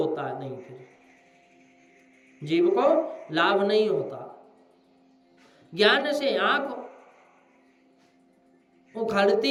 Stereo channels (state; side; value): identical; both; correlation 1.00